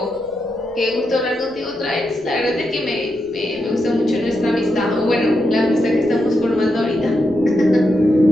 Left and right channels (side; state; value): right; noise; rumble, 27 dB below the sound